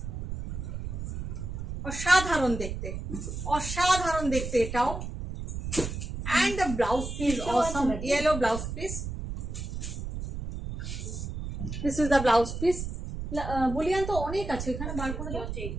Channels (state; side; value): noise; right; rumble, 6 dB below the sound